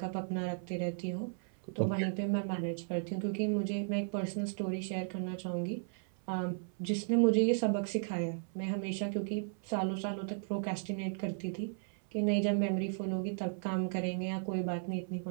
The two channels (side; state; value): left; silent; 54 dB below the other